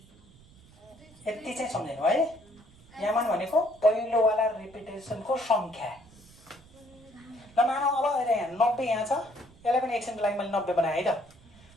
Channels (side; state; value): right; noise; rumble, 25 dB below the sound